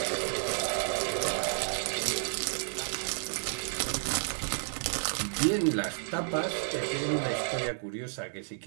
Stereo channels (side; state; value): left; silent; 57 dB below the other